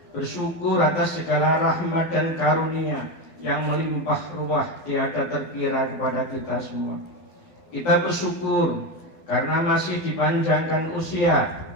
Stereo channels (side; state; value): right; late; 12 ms